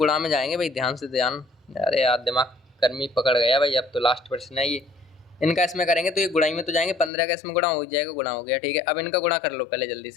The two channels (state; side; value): drops out; right; at 7.1 s